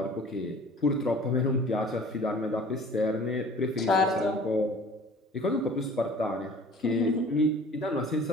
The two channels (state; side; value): normal; both; correlation 0.47